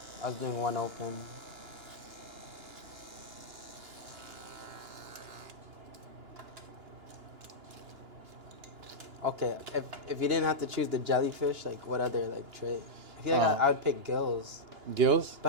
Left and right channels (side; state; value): left; late; 2.9 ms